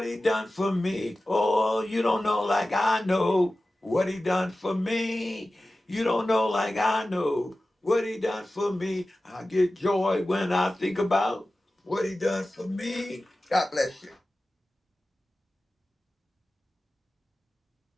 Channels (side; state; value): both; normal; correlation 0.96